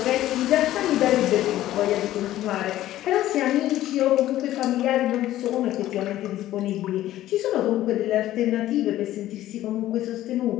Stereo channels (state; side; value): quieter; right; 14.0 dB